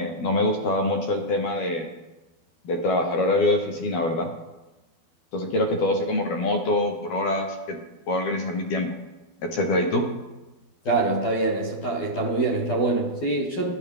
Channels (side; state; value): right; late; 12 ms